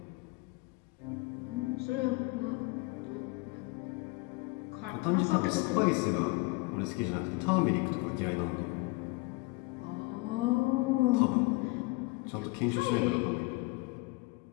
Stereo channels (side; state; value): right; quieter; 25.1 dB